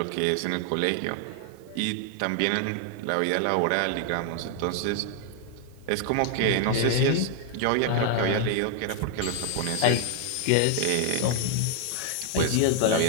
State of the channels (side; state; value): both; different; correlation 0.00